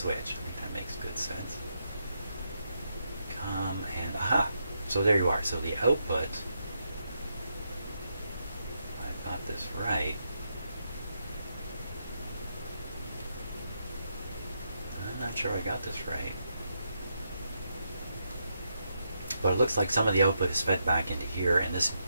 I think that makes good sense. Come and aha! So there you are. So the output, I got this right. I'm not sure I got this right. But it looks like some of the output is fed back into here, and this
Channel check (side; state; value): both; inverted; correlation -0.81